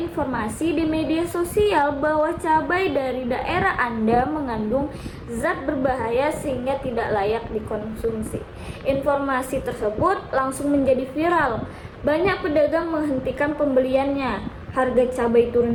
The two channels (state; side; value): identical; both; correlation 1.00